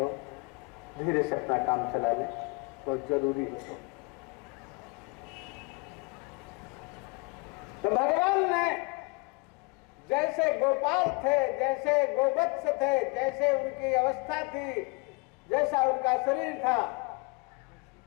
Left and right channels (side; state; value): right; quieter; 28.6 dB